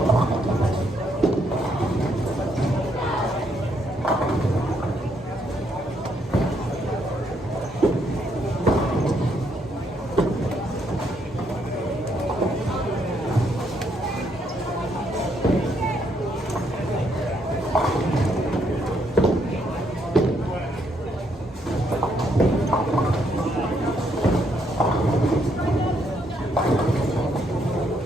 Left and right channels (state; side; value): normal; both; correlation 0.73